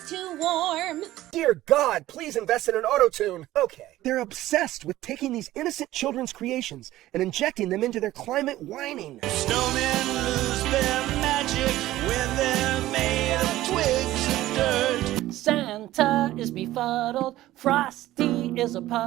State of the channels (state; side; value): quieter; left; 15.5 dB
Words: too warm. Dear God, please invest in an auto-tune. Okay. They're obsessed with taking these innocent children's creations and injecting them into their climate whining. Snowmen lose their magic when they're made of twigs and dirt. Santa is befuddled, Frosty is a